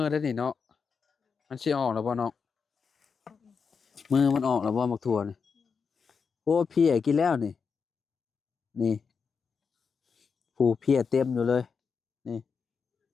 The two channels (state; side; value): quieter; right; 5.7 dB